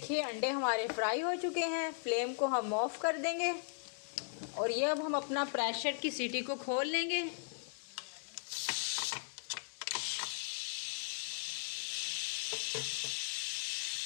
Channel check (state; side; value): silent; right; digital silence